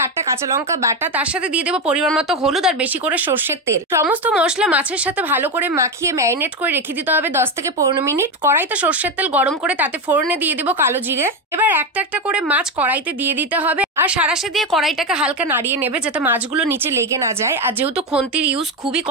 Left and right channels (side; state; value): both; normal; correlation 0.12